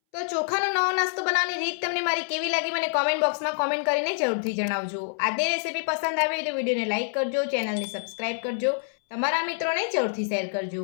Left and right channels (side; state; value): right; silent; 61 dB below the other